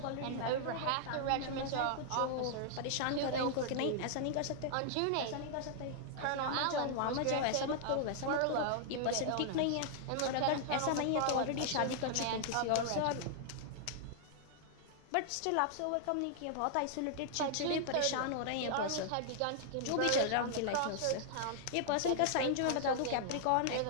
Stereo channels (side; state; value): both; different; correlation -0.01